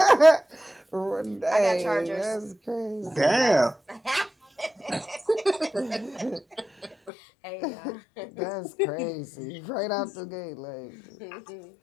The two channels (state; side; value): drops out; right; at 7.1 s